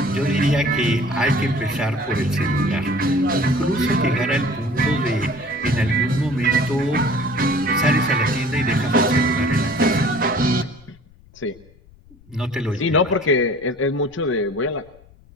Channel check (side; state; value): left; noise; rumble, 26 dB below the sound